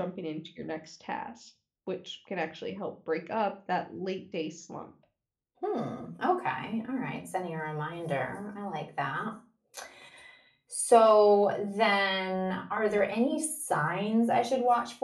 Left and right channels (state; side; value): identical; both; correlation 1.00